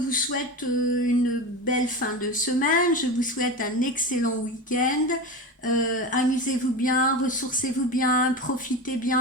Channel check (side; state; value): both; normal; correlation 0.25